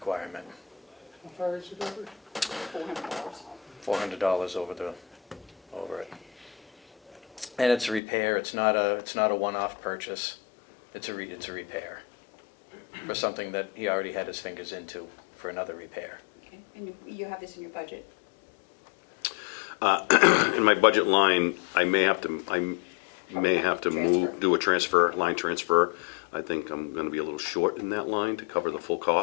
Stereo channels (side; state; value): right; drops out; at 8.0 s